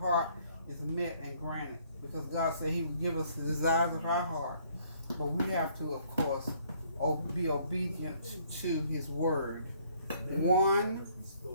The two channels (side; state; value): both; inverted; correlation -0.63